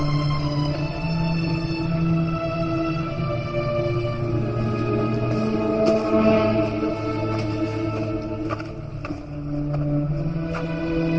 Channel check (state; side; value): identical; both; correlation 1.00